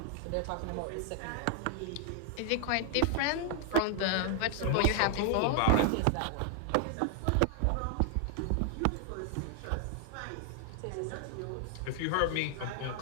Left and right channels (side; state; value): both; different; correlation 0.00